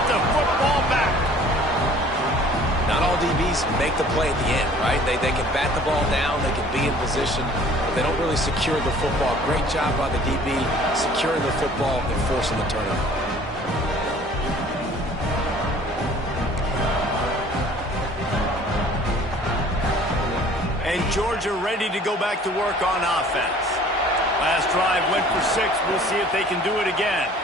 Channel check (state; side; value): normal; both; correlation 0.52